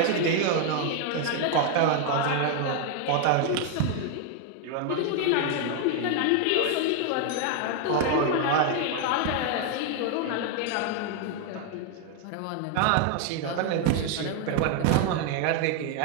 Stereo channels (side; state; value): both; different; correlation 0.00